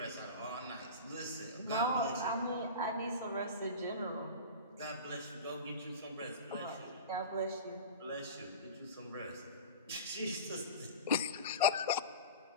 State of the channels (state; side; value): inverted; both; correlation -0.31